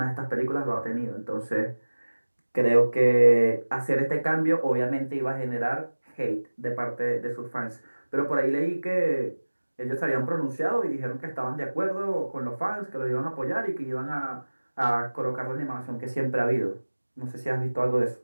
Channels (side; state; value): both; inverted; correlation -1.00